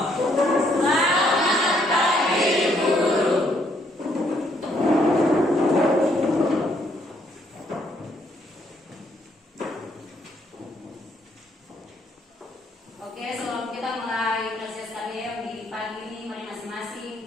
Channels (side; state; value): both; normal; correlation 0.70